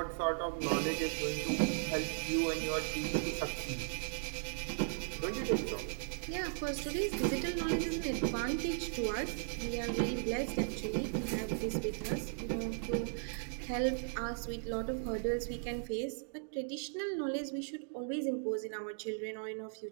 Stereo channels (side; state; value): left; silent; digital silence